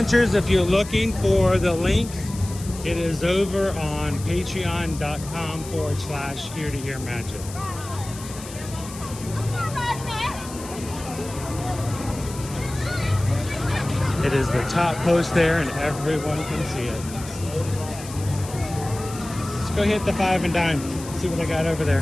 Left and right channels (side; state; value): left; noise; hiss, 14 dB below the sound